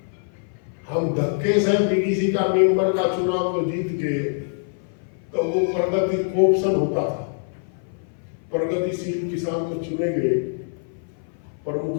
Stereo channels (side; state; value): right; silent; 57 dB below the other